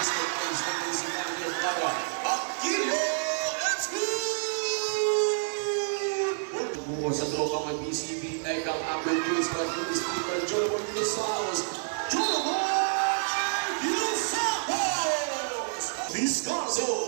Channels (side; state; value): left; silent; digital silence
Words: page ng BCB para Aquilio Execute! Buko sa trokang ng BCB, Ekang Ambrose, Pag-Ulis, Pag-Ulis, Joloboy, Dinosauros, Joloboy, Dinosauros!